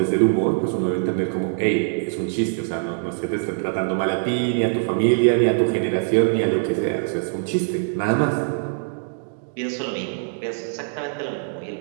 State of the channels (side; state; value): left; silent; digital silence